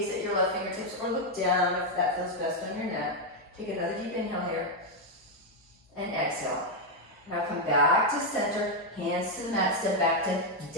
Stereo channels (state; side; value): normal; both; correlation 0.01